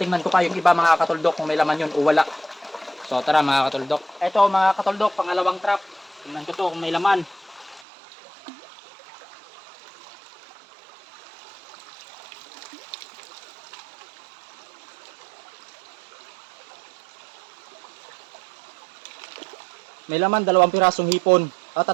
ko pa yung iba mga katuldok kung may laman yun o wala. So tara mga katuldok. Ito mga katuldok, pangalawang trap. Tingnan ko to kung may laman. May laman, 2 pirasong hipon.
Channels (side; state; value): left; drops out; at 7.9 s